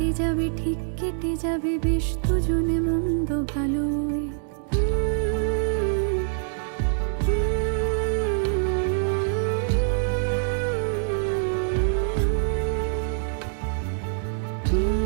যাবে, ঠিক কেটে যাবে বেশ দুজনে মন্দ ভালোই।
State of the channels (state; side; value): silent; left; digital silence